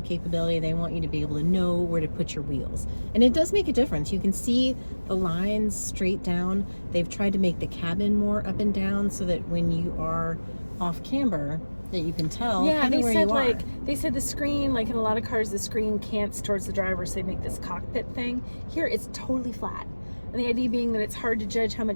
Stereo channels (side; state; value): both; inverted; correlation -1.00